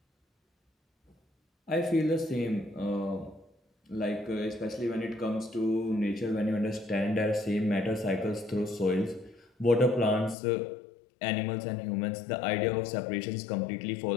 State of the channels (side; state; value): right; drops out; at 10.4 s